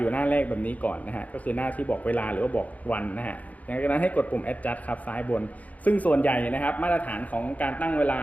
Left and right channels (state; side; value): late; right; 0.073 ms